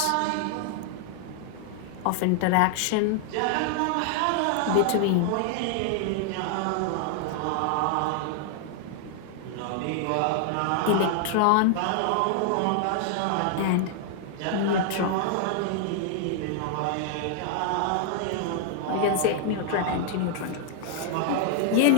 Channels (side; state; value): both; different; correlation 0.00